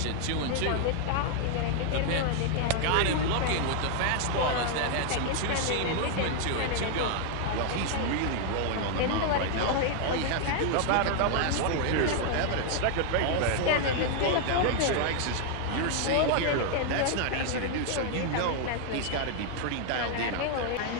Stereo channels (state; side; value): different; both; correlation 0.00